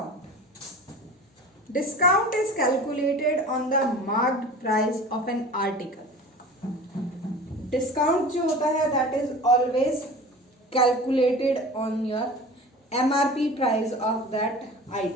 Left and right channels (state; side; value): normal; both; correlation 0.38